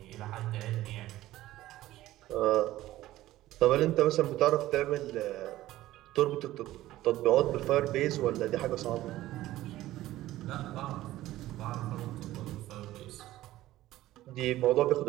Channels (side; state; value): left; quieter; 15.5 dB